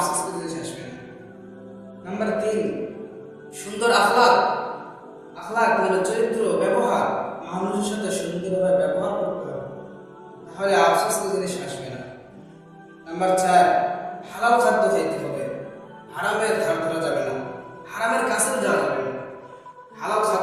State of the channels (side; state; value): both; identical; correlation 1.00